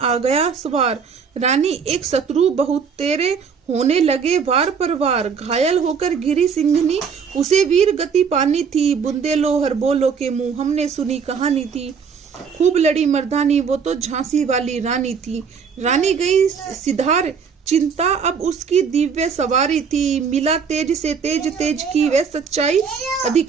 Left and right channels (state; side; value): quieter; left; 6.2 dB